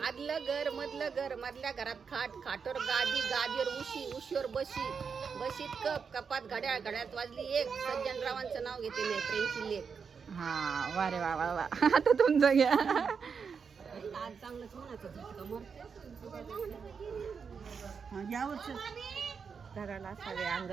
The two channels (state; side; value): quieter; left; 6.0 dB